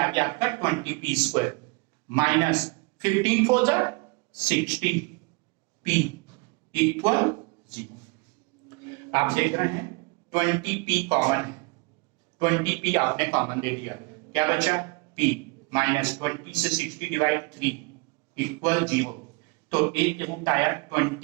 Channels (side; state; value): left; quieter; 30.0 dB